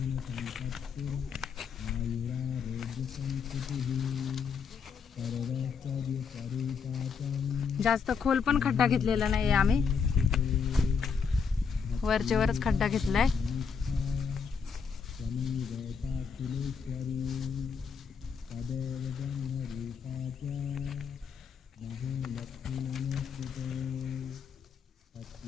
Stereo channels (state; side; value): quieter; right; 6.0 dB